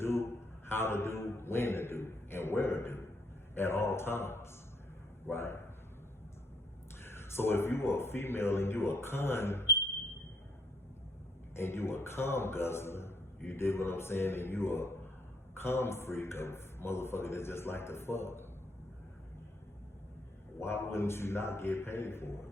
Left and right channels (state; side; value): normal; both; correlation 0.69